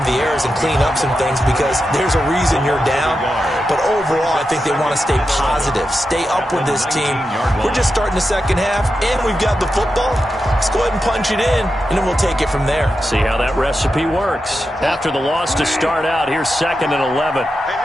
the errors and clean up some things because there's a reason you're down. But overall, I think they want to stay positive, stay up with this team. We're just starting the second half, and we've got the football. Let's go ahead and punch it in, and then we'll take it from there. See how that recipe works. After the loss to start out, here's 2nd and 11.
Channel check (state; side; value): normal; both; correlation 0.89